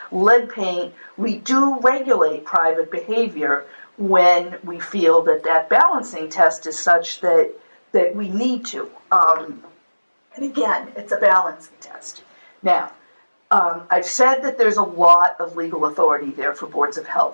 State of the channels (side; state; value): both; inverted; correlation -1.00